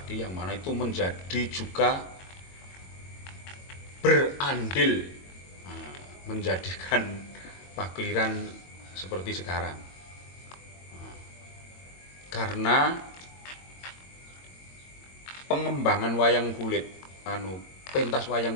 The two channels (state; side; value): late; right; 22 ms